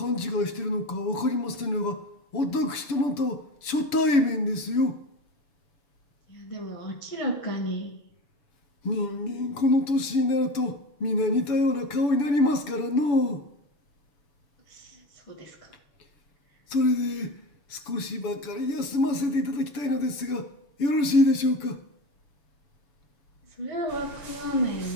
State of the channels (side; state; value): right; late; 7.0 ms